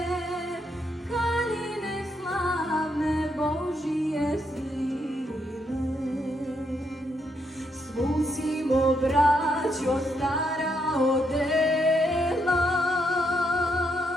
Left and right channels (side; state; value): both; normal; correlation 0.77